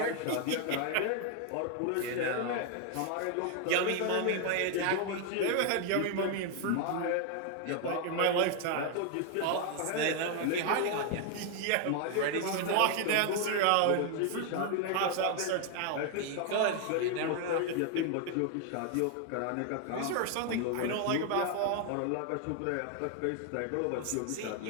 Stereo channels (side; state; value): both; different; correlation 0.01